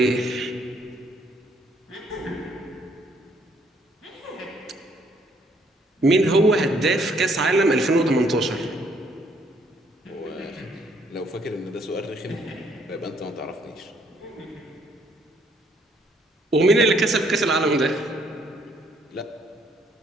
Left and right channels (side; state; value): both; normal; correlation 0.67